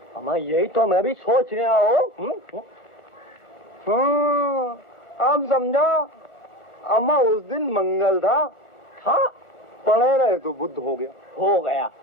अम्मा यही तो मैं भी सोच रहा हूँ। अब समझा, अम्मा उस दिन मंगल था, पढ़े रहे तो बुध हो गया,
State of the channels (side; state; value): right; late; 1.4 ms